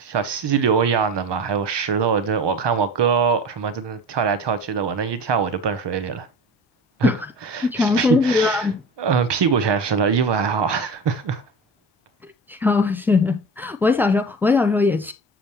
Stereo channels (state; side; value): normal; both; correlation 0.34